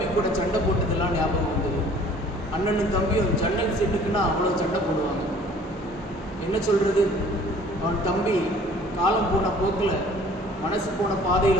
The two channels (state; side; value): normal; both; correlation 0.52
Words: கூட சண்டை போட்டதெல்லாம் ஞாபகம் வந்தது. அண்ணனும் தம்பியும் ஜன்னல் சீட்டுக்குன்னா அவ்வளோ சண்டை போடுவாங்க. என்ன சொல்றது, அவன் தம்பி காலம் போன போக்கில் மனசு போன